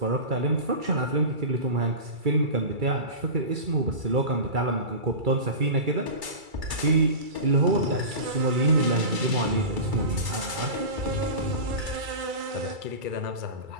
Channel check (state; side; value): late; left; 2.3 ms